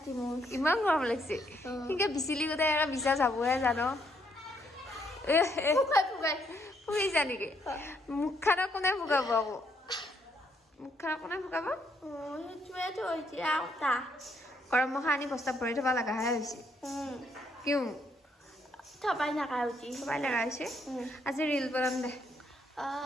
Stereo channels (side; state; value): both; normal; correlation 0.72